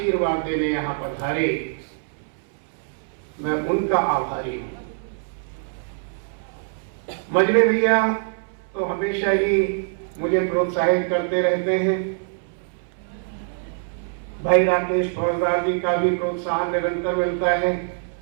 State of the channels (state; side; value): silent; left; 63 dB below the other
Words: देने यहाँ पधारे। मैं उनका आभारी हूँ। मजले भैया तो हमेशा ही मुझे प्रोत्साहित करते रहते हैं। भाई राकेश फौजदार जी का भी प्रोत्साहन निरंतर मिलता है।